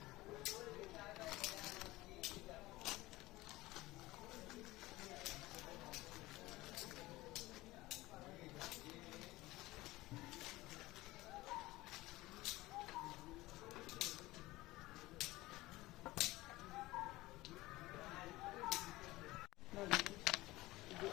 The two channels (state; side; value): quieter; right; 19.0 dB